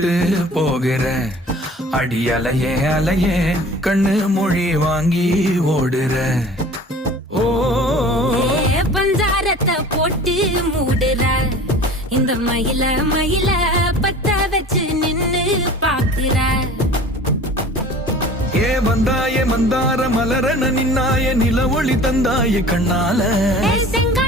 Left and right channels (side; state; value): both; normal; correlation 0.43